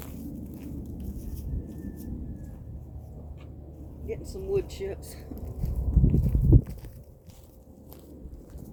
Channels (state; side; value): identical; both; correlation 1.00